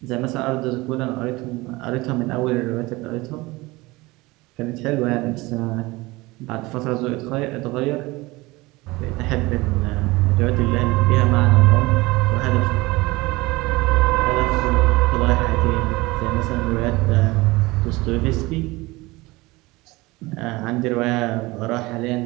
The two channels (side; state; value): left; quieter; 21.7 dB